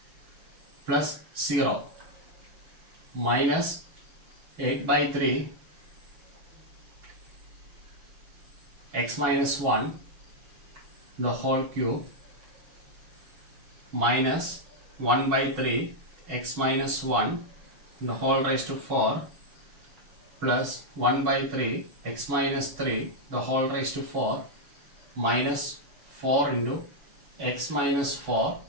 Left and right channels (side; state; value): left; late; 6.3 ms